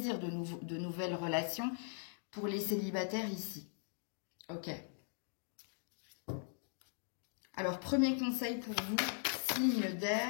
de nouvelles relations pour les célibataires ici. Ok. Alors, premier conseil pour vous, signe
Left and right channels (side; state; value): right; silent; 51 dB below the other